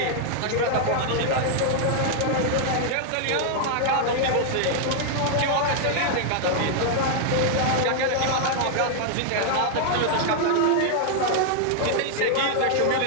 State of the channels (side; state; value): both; different; correlation 0.00